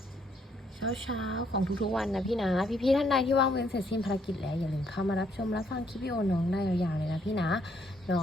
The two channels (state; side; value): normal; both; correlation 0.70